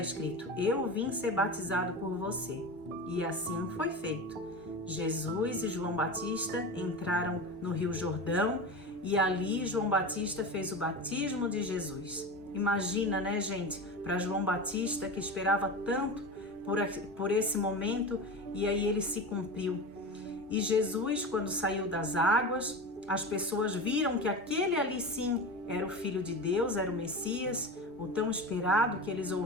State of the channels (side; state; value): both; normal; correlation 0.27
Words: Eu vim ser batizado por você. E assim foi feito. Jesus e João Batista entraram no Rio Jordão e ali João Batista fez o batismo de Jesus. Imagina, né, gente, para João Batista, que esperava tanto por esse momento, e aí ele se cumpriu. E Jesus, quando saiu das águas, as pessoas viram que aquele ali sim era o Filho de Deus, era o Messias, o tão esperado que eles